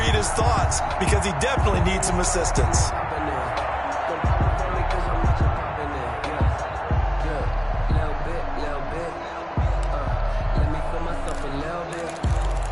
his thoughts because he definitely needs some assistance.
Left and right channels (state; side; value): identical; both; correlation 1.00